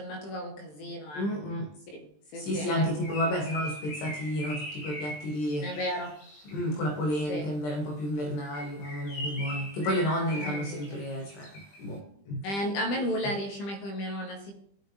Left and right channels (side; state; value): right; late; 20 ms